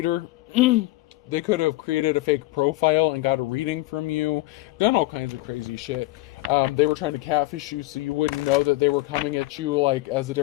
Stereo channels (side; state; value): right; quieter; 19.7 dB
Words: they could have created a fake profile and got a reading from you. Done all kinds of crazy shit. They were trying to catfish you so you wouldn't know that they were coming at you like as a